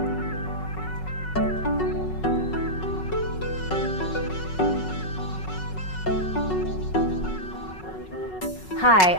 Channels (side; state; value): right; late; 5.4 ms